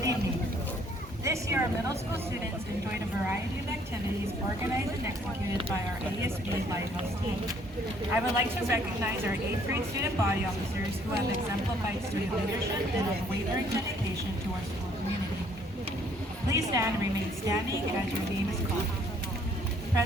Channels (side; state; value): both; normal; correlation 0.63